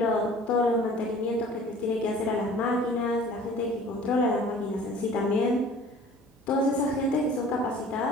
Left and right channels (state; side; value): normal; both; correlation 0.47